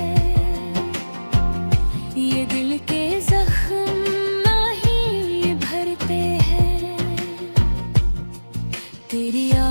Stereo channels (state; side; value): inverted; both; correlation -1.00